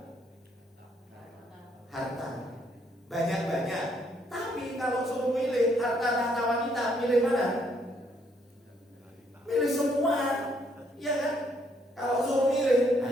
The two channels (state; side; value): normal; both; correlation 0.70